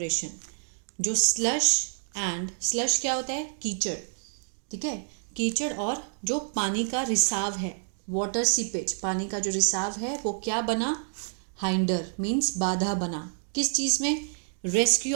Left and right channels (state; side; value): silent; left; digital silence